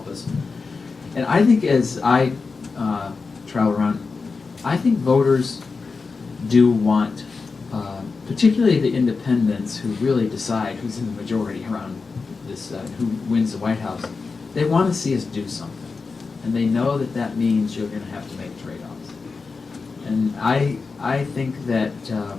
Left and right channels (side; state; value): right; quieter; 4.5 dB